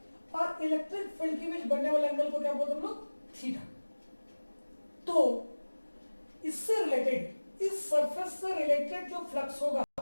और इलेक्ट्रिक फील्ड के बीच बनने वाले एंगल को क्या बोलते हैं हम लोग? थीटा. तो इससे रिलेटेड, इस सरफेस से रिलेटेड जो फ्लक्स होगा,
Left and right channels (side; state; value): both; inverted; correlation -1.00